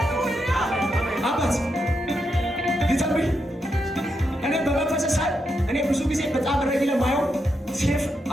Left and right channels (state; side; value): normal; both; correlation 0.83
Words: አባት ሊተንብይ እኔ በመንፈስ ሳይ እኔ ብዙ ጊዜ በጣም ረጊ ለማየው ሴፍ